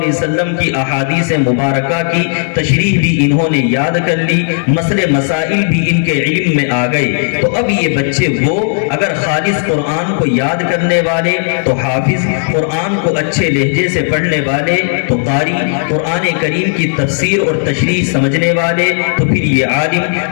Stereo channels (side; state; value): right; silent; digital silence